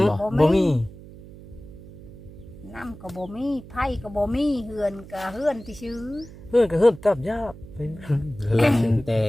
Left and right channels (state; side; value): noise; right; hum, 17 dB below the sound